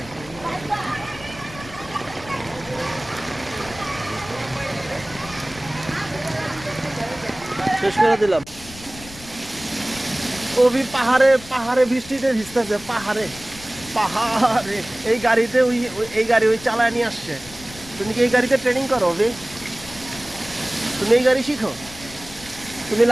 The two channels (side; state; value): left; noise; rumble, 18 dB below the sound